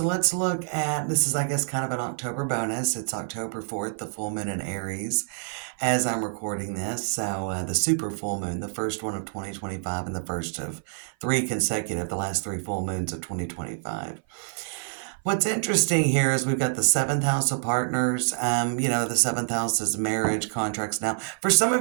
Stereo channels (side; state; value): left; silent; 56 dB below the other